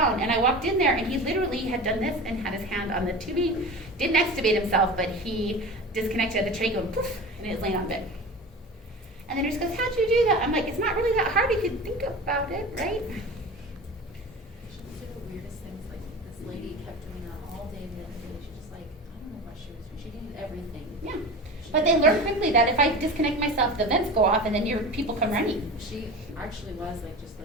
And I walked in there, and he literally had done this and had his hand on the tubing, didn't extubate himself, but he disconnected the tray going poof, and he was laying on bed. And the nurse goes, how'd you do that? I'm like, it's not really that hard if you think about it, right? She would do the weirdest things, like this lady kept doing that all day the other day. She just like, I don't know what she was doing. She did everything. Yeah. But they learn quickly that if I disconnect myself, the vents go off, and then your people come running. She actually was like just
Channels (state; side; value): normal; both; correlation 0.32